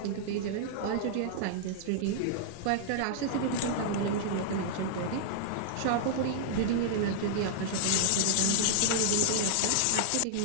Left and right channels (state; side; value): different; both; correlation -0.01